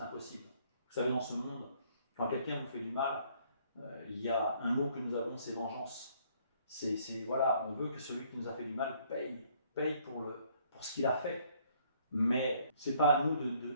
impossible. Vous savez, dans ce monde, quand quelqu'un vous fait du mal, il y a un mot que nous avons, c'est vengeance. Voilà, on veut que celui qui nous a fait du mal paye pour ce qu'il a fait. Mais ce n'est pas à nous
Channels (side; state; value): both; inverted; correlation -0.64